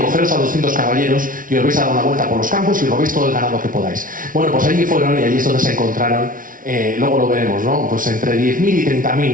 a 200 caballeros y os vais a dar una vuelta por los campos y robéis todo el ganado que podáis. Bueno, pues allí fueron y allí es donde se encontraron, luego lo veremos, ¿no? Pues entre 10.000 y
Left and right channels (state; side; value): late; left; 0.39 ms